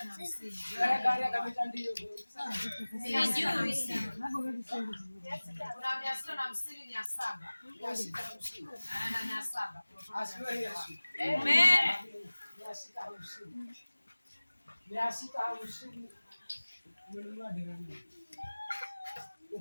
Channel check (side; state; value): both; inverted; correlation -1.00